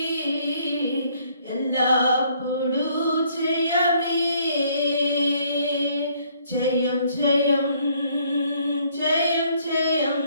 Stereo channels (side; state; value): both; inverted; correlation -0.64